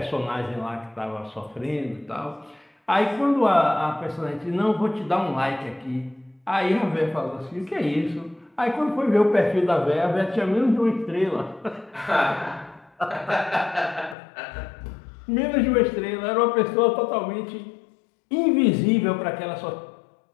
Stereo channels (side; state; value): right; drops out; at 14.2 s